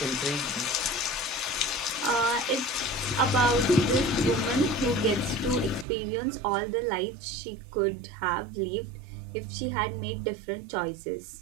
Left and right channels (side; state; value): left; drops out; at 5.9 s